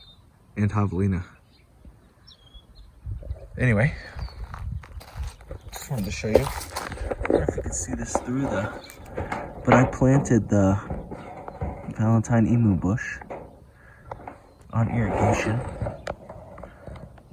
and Javelina. Anyway, just wanted to show you. I don't know if you can see this through but I planted the Valentine emu bush on irrigation.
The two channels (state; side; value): identical; both; correlation 1.00